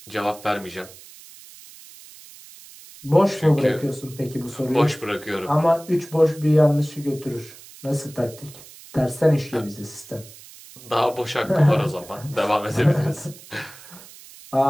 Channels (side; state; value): right; noise; hiss, 19 dB below the sound